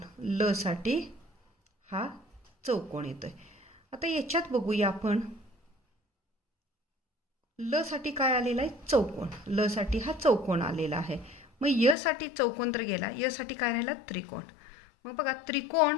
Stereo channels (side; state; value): right; drops out; at 12.0 s